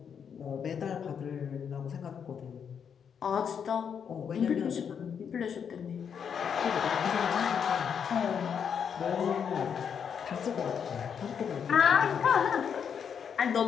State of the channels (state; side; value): quieter; right; 7.4 dB